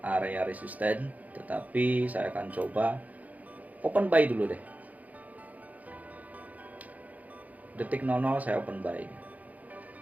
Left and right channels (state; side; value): late; left; 0.076 ms